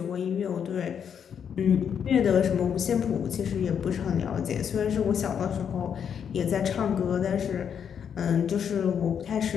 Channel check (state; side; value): quieter; right; 7.8 dB